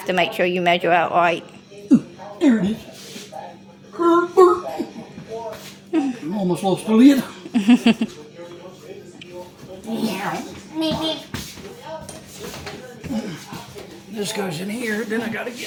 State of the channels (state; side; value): identical; both; correlation 1.00